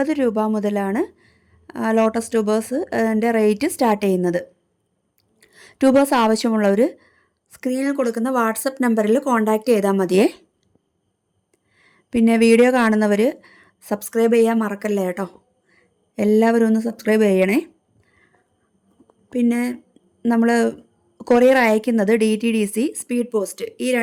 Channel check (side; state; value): both; identical; correlation 1.00